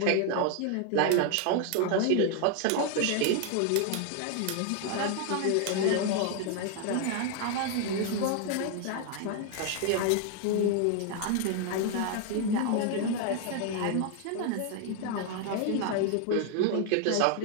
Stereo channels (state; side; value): different; both; correlation 0.00